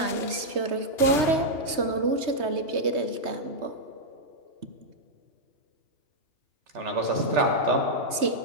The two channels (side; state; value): left; late; 3.2 ms